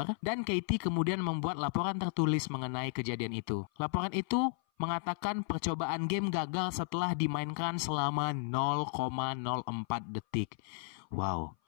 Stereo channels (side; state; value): right; silent; 55 dB below the other